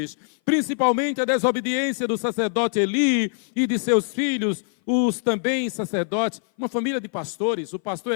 principalmente a desobediência do sacerdote Eli e de seus filhos, os também sacerdotes, uma família de pastores, o pastor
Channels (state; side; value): silent; right; 58 dB below the other